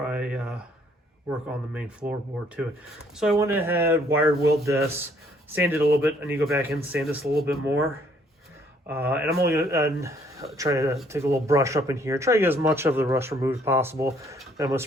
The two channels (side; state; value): both; normal; correlation 0.64